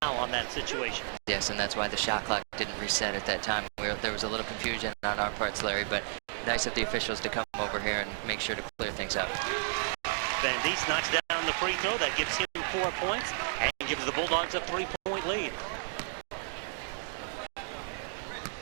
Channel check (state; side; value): silent; left; 56 dB below the other